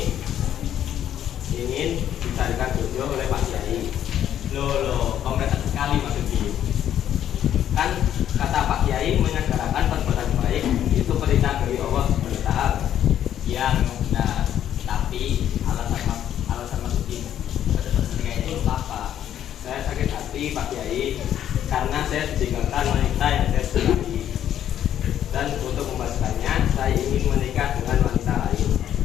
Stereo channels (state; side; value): quieter; right; 10.6 dB